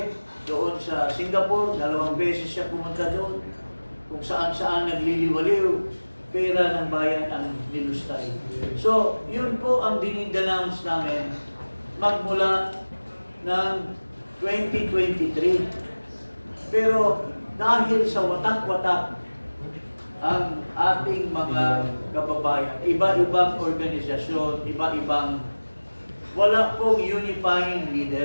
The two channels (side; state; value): both; inverted; correlation -1.00